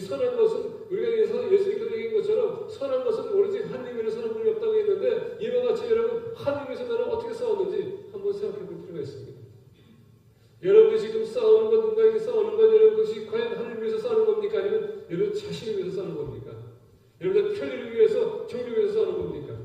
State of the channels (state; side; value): identical; both; correlation 1.00